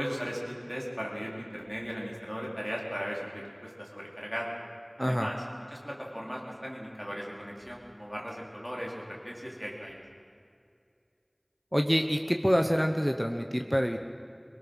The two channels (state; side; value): identical; both; correlation 1.00